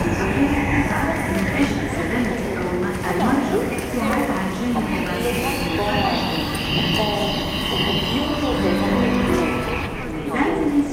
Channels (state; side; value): identical; both; correlation 1.00